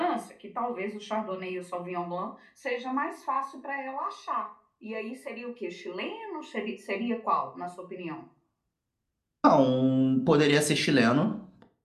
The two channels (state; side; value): identical; both; correlation 1.00